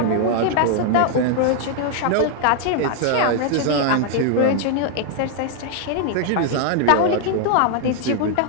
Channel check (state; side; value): different; both; correlation 0.00